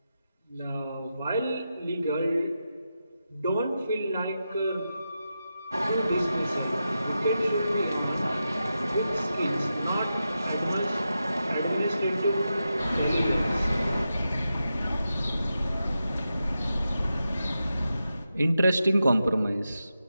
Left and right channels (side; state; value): both; inverted; correlation -0.89